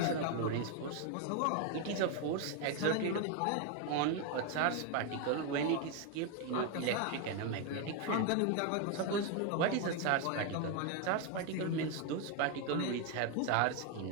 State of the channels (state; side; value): different; both; correlation 0.01